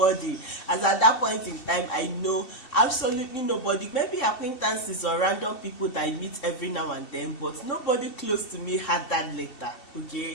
As at that point in time, I know absolutely nobody. Maybe acquaintances or random people that I meet every now and then, but nobody close to me had that letter,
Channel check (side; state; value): right; late; 2.7 ms